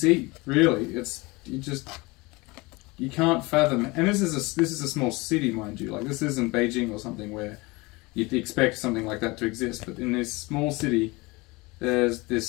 really, you can't fathom. And this is a small city, mind you. Like, this isn't Beijing or something where you'd expect something like that to exist. But in this small city, there's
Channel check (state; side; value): quieter; right; 24.2 dB